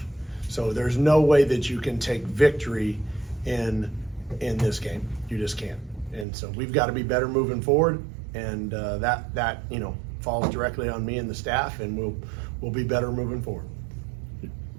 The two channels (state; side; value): drops out; left; at 6.2 s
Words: So there's no way that you can take victory in this game. You just can't. And so we've got to be better moving forward. And that falls directly on me and the staff, and we'll be better moving forward.